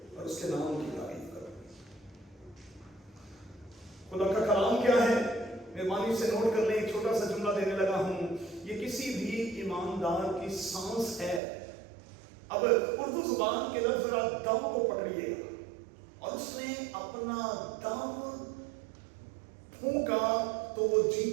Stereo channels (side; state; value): left; drops out; at 11.4 s